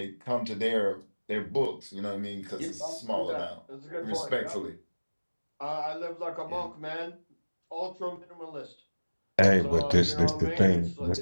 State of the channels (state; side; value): inverted; both; correlation -1.00